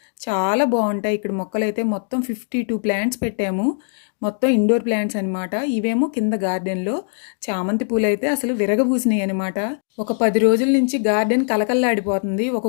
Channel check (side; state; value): right; silent; digital silence